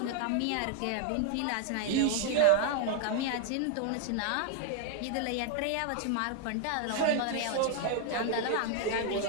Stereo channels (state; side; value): different; both; correlation 0.00